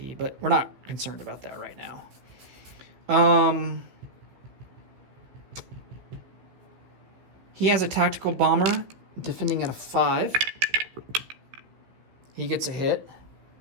but we're not concerned about that right now. He has a tactical bomber defending at a 5. He gets a hit.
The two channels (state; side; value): late; left; 15 ms